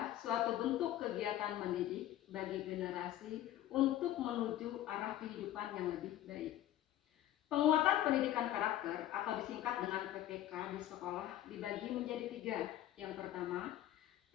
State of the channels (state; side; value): quieter; right; 13.1 dB